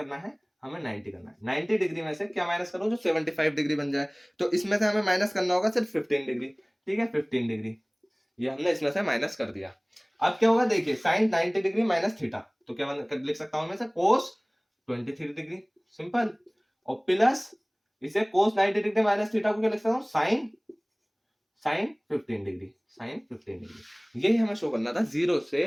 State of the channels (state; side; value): identical; both; correlation 1.00